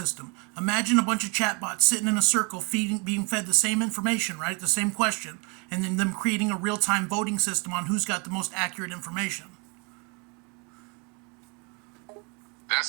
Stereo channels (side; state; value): left; quieter; 32.1 dB